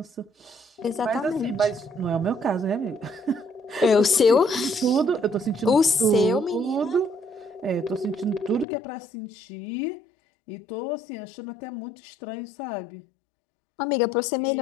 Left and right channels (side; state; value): right; drops out; at 8.7 s